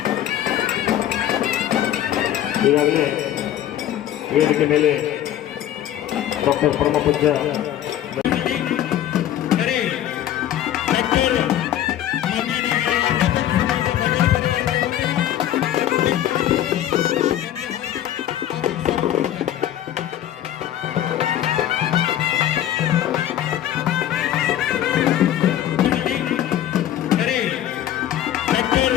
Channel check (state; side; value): quieter; right; 11.8 dB